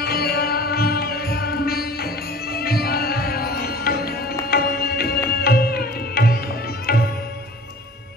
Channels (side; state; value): both; normal; correlation 0.45